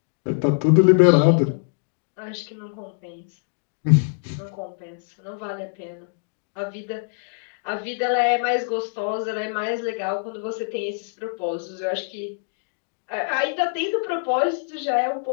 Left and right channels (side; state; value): right; silent; digital silence